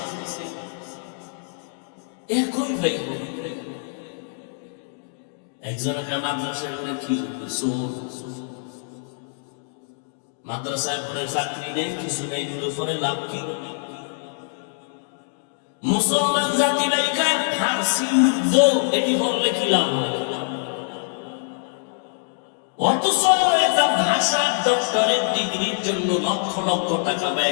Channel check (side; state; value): right; silent; digital silence